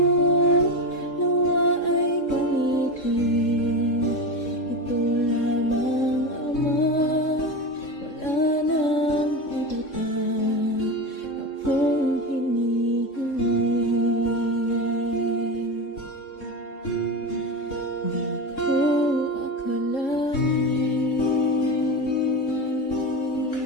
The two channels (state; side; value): late; right; 3.7 ms